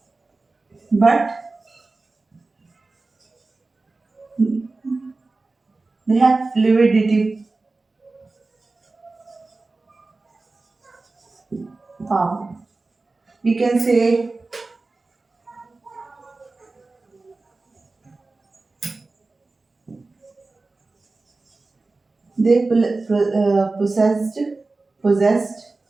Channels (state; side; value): quieter; left; 3.5 dB